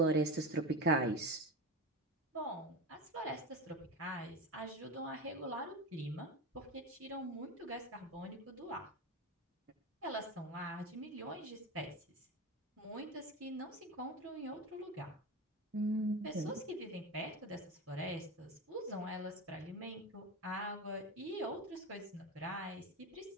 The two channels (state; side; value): normal; both; correlation 0.23